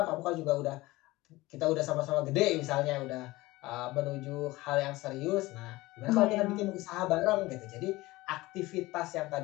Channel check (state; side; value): quieter; right; 19.7 dB